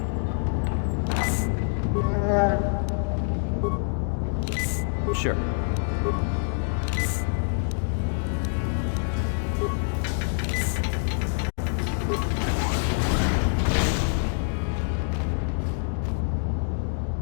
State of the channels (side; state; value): right; silent; digital silence